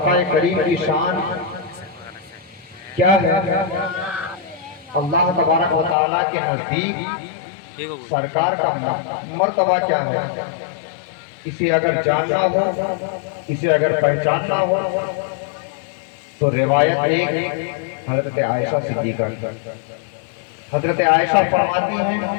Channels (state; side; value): drops out; right; at 6.0 s